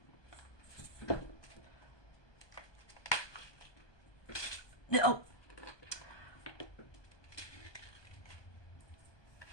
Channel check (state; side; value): late; right; 1.2 ms